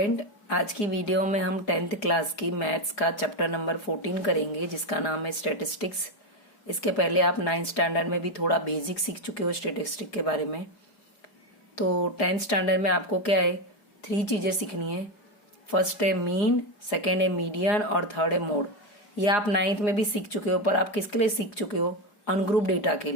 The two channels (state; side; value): late; right; 4.8 ms